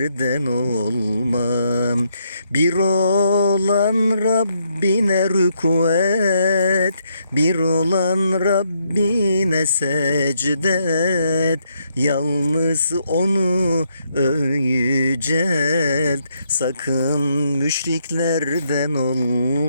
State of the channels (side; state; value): both; inverted; correlation -0.76